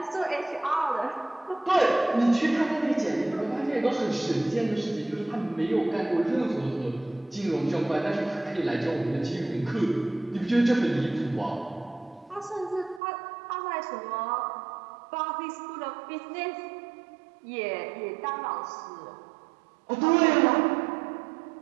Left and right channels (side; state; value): left; drops out; at 13.0 s